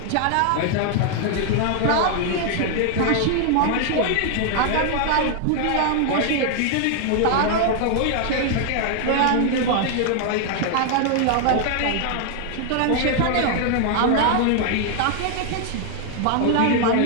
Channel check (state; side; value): different; both; correlation 0.00